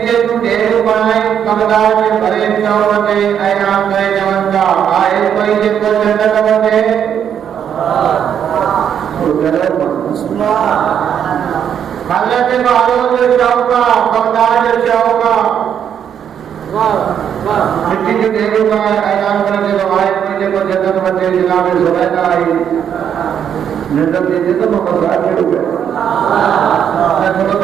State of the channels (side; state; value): left; quieter; 8.7 dB